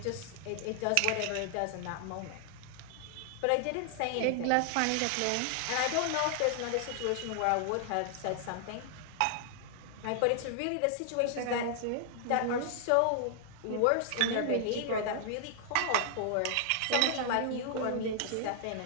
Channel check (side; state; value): both; different; correlation -0.01